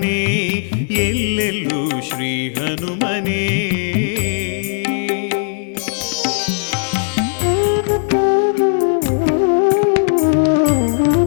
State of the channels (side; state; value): right; silent; digital silence